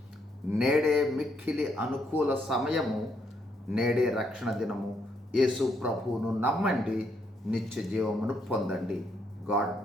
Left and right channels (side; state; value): both; normal; correlation 0.75